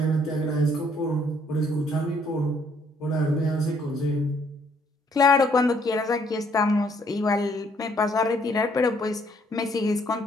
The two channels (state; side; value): normal; both; correlation 0.66